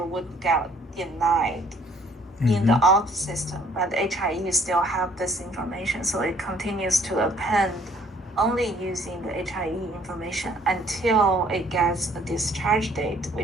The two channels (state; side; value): normal; both; correlation 0.60